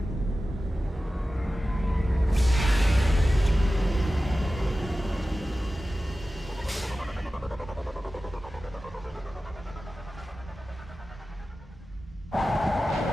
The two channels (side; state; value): both; normal; correlation 0.95